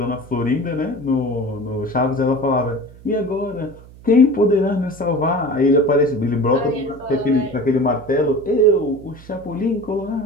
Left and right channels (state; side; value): noise; right; hum, 21 dB below the sound